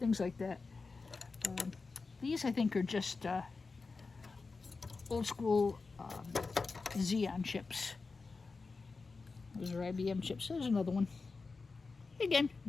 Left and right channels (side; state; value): right; quieter; 4.2 dB